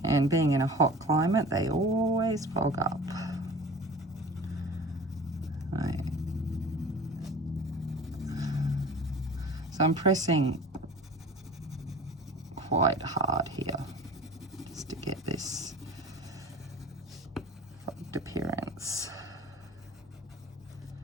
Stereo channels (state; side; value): normal; both; correlation 0.40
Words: And being in a hot climate, they always fog up. Right. So I'm pressing quite hard here just to get this fogged appearance.